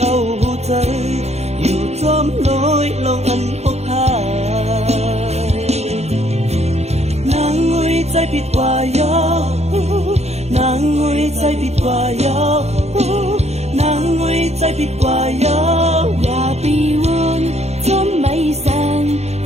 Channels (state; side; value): late; left; 0.31 ms